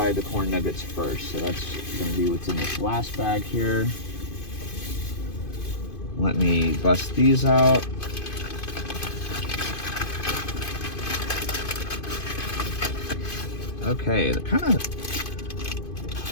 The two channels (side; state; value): right; late; 2.5 ms